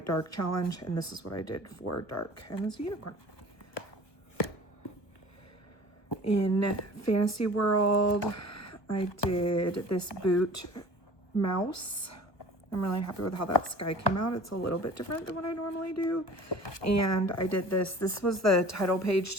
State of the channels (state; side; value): late; right; 1.1 ms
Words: dark challenge, and this is what I did for dark, and it's a unicorn. In Fantasy World, I did this boot mouse. I'm really happy with how that sky came out. It's a little bit different than what I normally do. And I did this. This was the title page